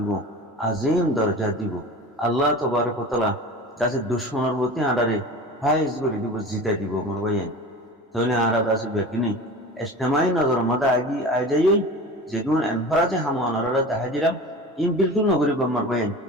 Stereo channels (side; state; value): both; normal; correlation 0.35